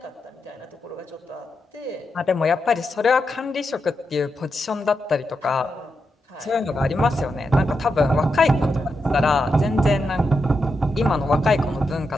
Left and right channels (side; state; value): both; normal; correlation 0.86